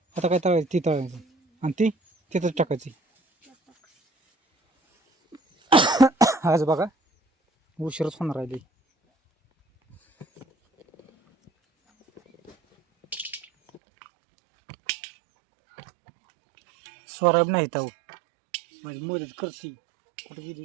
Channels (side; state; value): left; drops out; at 13.8 s